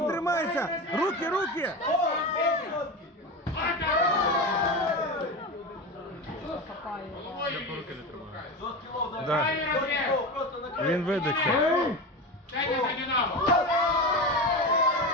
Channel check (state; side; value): normal; both; correlation 0.23